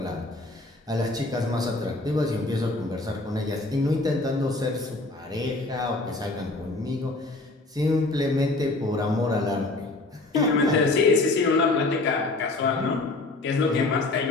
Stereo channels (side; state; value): right; quieter; 3.1 dB